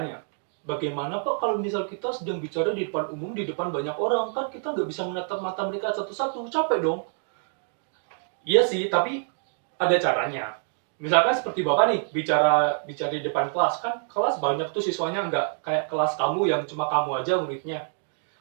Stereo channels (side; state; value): left; silent; digital silence